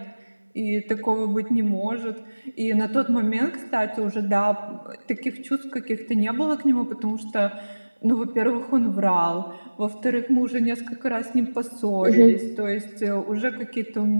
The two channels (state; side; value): inverted; both; correlation -1.00